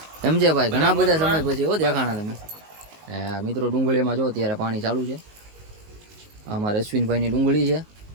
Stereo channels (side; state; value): left; late; 19 ms